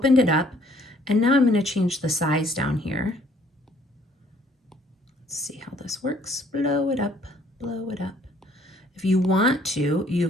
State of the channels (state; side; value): normal; both; correlation 0.61